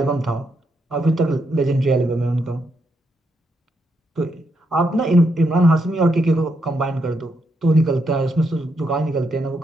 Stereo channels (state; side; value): normal; both; correlation 0.79